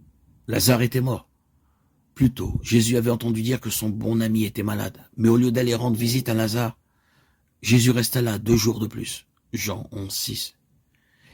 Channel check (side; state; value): both; identical; correlation 1.00